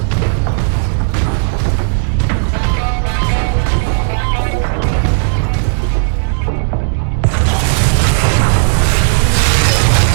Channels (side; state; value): left; silent; 71 dB below the other